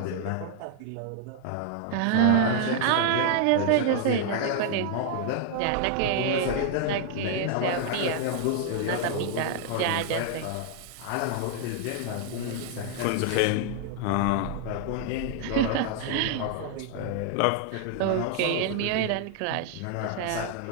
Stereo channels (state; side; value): different; both; correlation 0.00